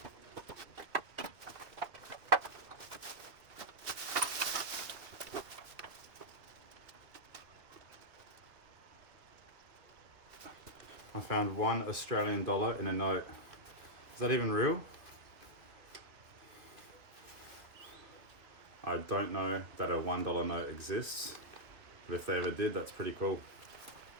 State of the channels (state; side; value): late; left; 2.5 ms